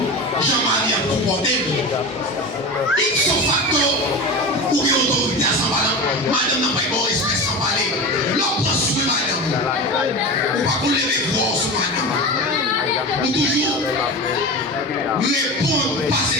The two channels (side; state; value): both; normal; correlation 0.27